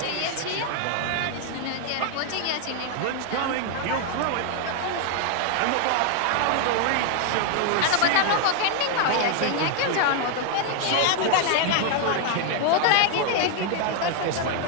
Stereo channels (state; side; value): different; both; correlation 0.00